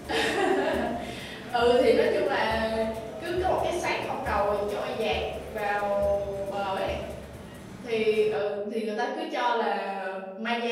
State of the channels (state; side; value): identical; both; correlation 1.00